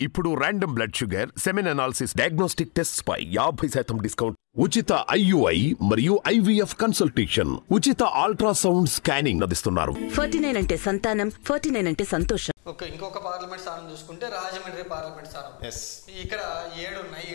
ఇప్పుడు random blood sugar, semen analysis, diagnostic tests పై 50% discount, ఉచిత IUI మరియు IVF కన్సల్టేషన్, ఉచిత అల్ట్రాసౌండ్ స్కానింగ్ అందిస్తున్నారు. 49 అంటే సంతానం, 49 అంటే సంతోషం. ఓకే, ఇంకొక పార్లమెంట్ స్థానం చూసుకుంటే రాజమండ్రి పార్లమెంట్ స్థానం. ఇక్కడ 7 ఉన్నాయి.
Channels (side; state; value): right; quieter; 35.9 dB